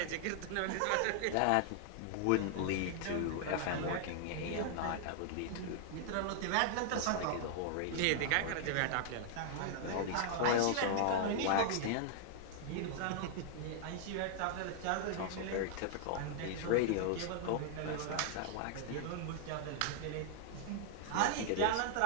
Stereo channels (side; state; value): both; different; correlation 0.00